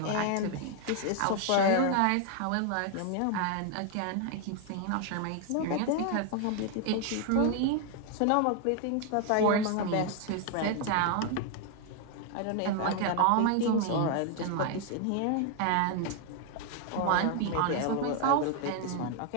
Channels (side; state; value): both; different; correlation 0.00